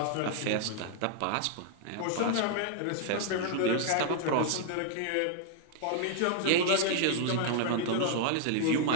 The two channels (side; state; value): both; different; correlation 0.00